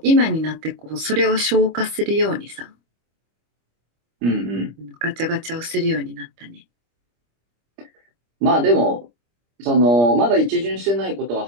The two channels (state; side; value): late; left; 25 ms